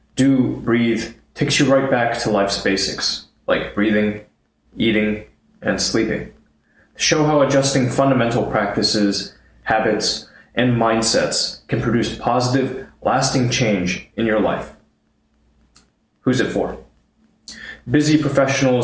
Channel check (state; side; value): identical; both; correlation 1.00